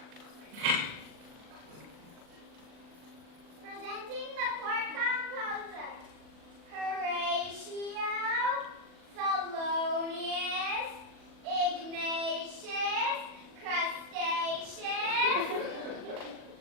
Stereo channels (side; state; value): left; late; 40 ms